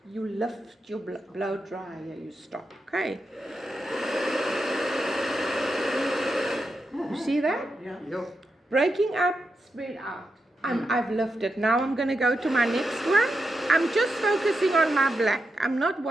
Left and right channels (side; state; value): both; normal; correlation 0.87